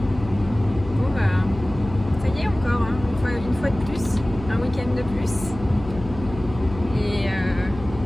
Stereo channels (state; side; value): noise; left; hum, 12 dB below the sound